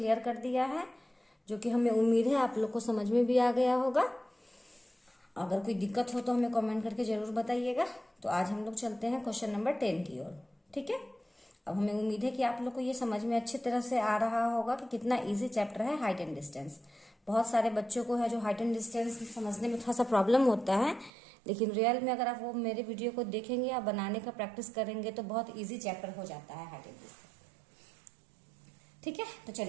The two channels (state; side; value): drops out; left; at 21.1 s